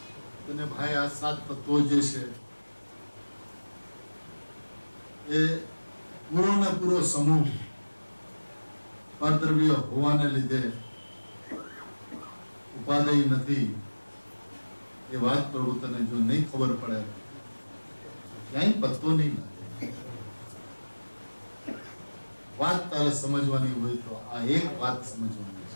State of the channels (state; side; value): inverted; both; correlation -1.00